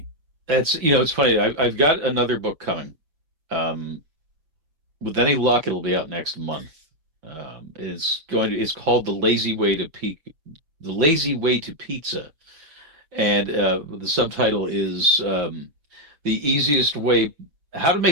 that's it's funny. I've got another book coming. Um, with any luck, it'll be out next month. It's called The Lazy Way to Pizza, and the subtitle is the easiest way, how to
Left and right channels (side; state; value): left; late; 6.2 ms